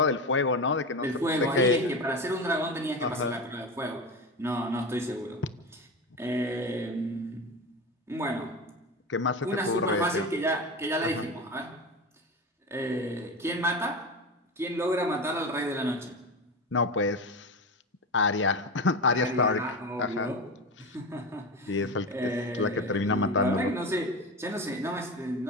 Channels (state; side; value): normal; both; correlation 0.23